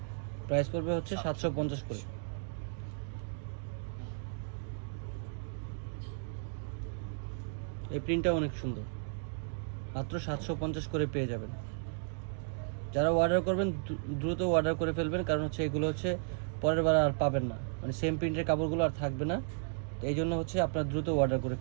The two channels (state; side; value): silent; left; digital silence